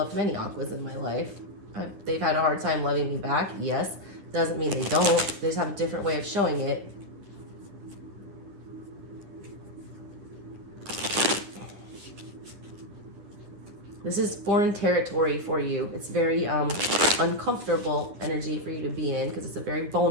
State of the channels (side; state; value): left; late; 10 ms